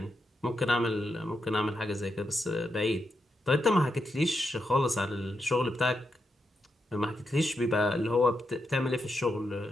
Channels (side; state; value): both; normal; correlation 0.84